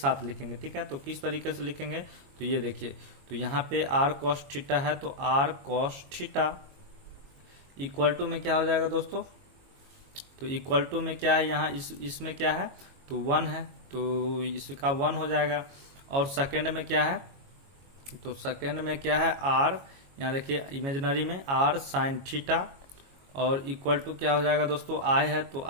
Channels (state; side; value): late; left; 22 ms